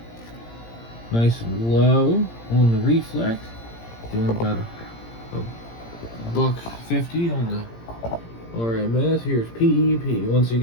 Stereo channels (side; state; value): right; late; 17 ms